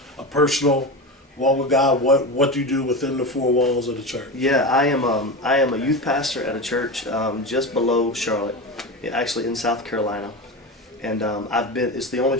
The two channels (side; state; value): both; normal; correlation 0.23